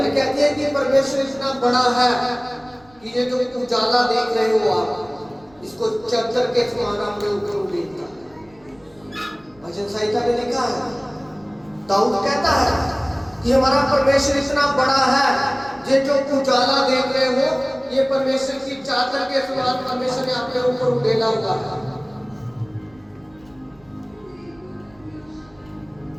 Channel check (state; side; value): noise; right; rumble, 29 dB below the sound